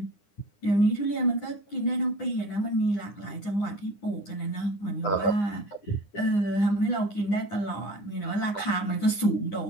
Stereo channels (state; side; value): late; right; 9.8 ms